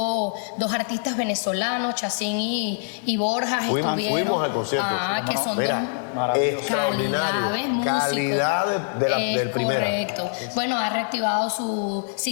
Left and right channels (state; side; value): silent; right; 60 dB below the other